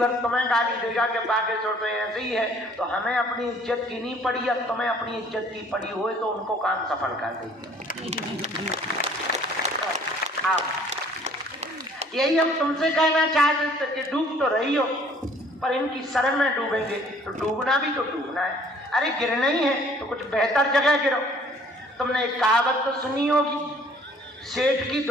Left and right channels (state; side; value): normal; both; correlation 0.56